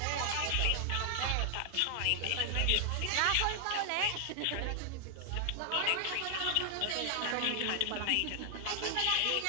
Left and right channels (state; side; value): different; both; correlation 0.00